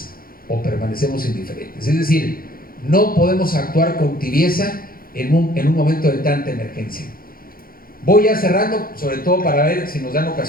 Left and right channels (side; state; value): right; late; 0.42 ms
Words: o permanecemos indiferentes. Es decir, no podemos actuar con tibieza en un momento de tanta emergencia. Voy ya cerrando, sobre todo para ver si nos dan